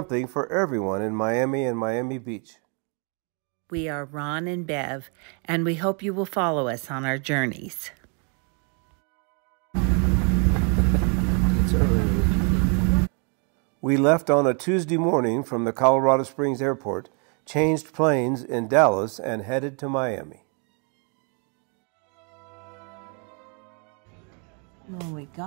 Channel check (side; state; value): left; quieter; 37.6 dB